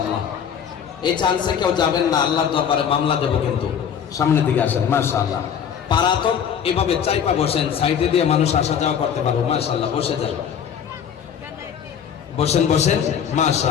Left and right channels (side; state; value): right; quieter; 8.1 dB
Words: এই চান্সে কেউ যাবেন না, আল্লাহর দরবারে মামলা দেব কিন্তু। সামনের দিকে আসেন। মাশাআল্লাহ, পারা তো এভাবে চাইপা বসেন, সাইডে দিয়ে মানুষ আসা যাওয়া করতে পারবে। মাশাআল্লাহ, বসে যান, বসেন বসেন।